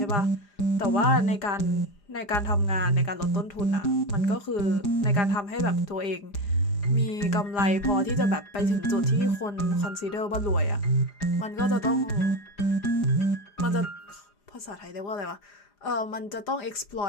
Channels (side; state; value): right; late; 4.9 ms